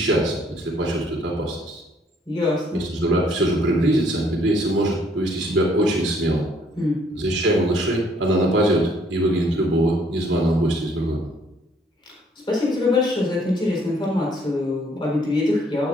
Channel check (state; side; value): normal; both; correlation 0.64